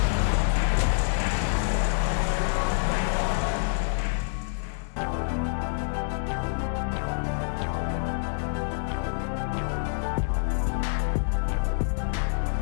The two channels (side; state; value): right; silent; digital silence